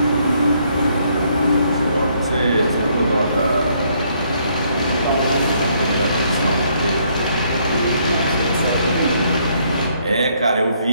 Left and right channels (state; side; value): inverted; both; correlation -0.69